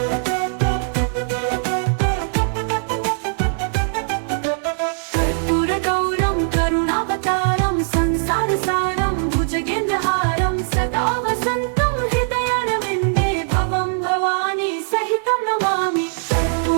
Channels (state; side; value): silent; left; digital silence